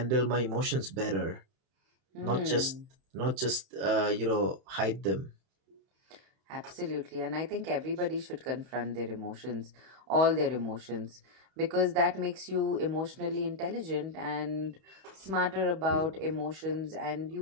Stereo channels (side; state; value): left; late; 31 ms